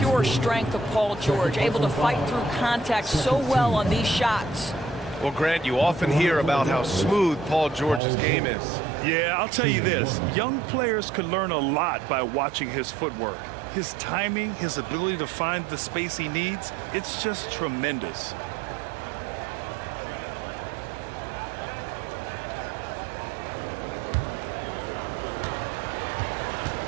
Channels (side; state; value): left; drops out; at 8.0 s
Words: strength of Paul George, able to fight through contact so well on these shots. Well, Grant, you often hear about how smooth Paul George's game is. Yeah, I'll tell you this. Young players can learn a lot by watching his footwork. His timing, his ability to find the space he needs, it's just tremendous.